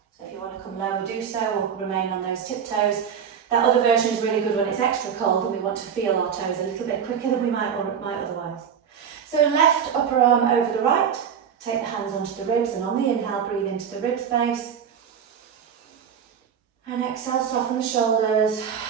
So if you want to come lower, do so, or remain on those tiptoes. That other version is really good when it's extra cold and we want to feel our toes a little bit quicker than we might otherwise. So left upper arm over the right. Take the hands onto the ribs, and on the inhale, breathe into the rib space. And exhale, soften the shoulders.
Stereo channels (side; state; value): left; quieter; 7.7 dB